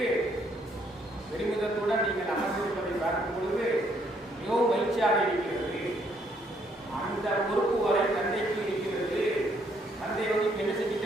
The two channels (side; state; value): both; normal; correlation 0.69